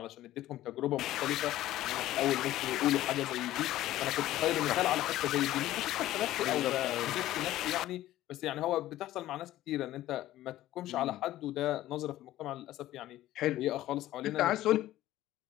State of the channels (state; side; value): quieter; right; 14.6 dB